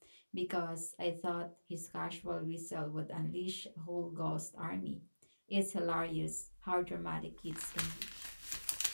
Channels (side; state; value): both; inverted; correlation -1.00